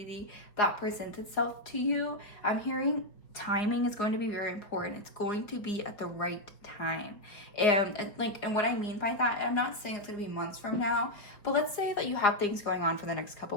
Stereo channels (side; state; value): right; late; 4.8 ms